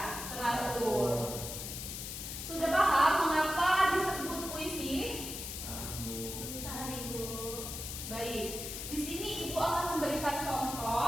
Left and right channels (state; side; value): noise; left; hiss, 7 dB below the sound